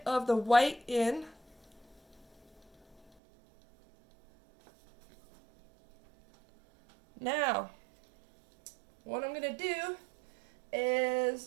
of the white in. Now, what I'm going to do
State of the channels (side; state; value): left; drops out; at 3.1 s